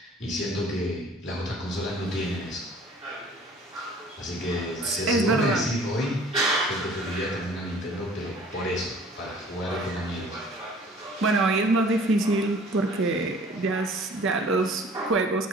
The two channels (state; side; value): normal; both; correlation 0.51